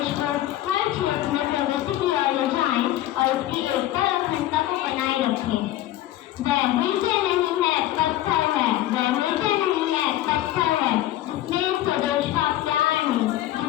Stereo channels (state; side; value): quieter; right; 14.1 dB